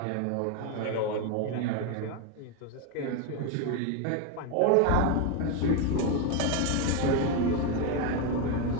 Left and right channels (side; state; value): both; different; correlation 0.02